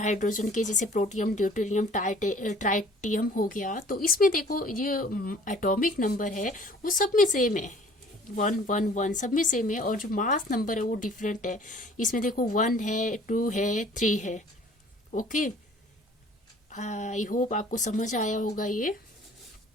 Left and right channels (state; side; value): normal; both; correlation 0.52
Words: के, जैसे प्रोटियम, ड्यूटेरियम, ट्राइटियम हो गया। तो इसमें देखो ये एटॉमिक नंबर है वो सब में सेम है, 1 1 1 सब में सेम है, और जो मास नंबर है वो डिफरेंट है। इसमें देखो 1 है, 2 है, 3 है। ओके, आई होप आपको समझ आया होगा ये।